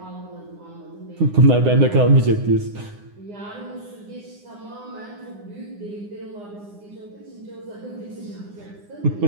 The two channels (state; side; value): late; left; 9.8 ms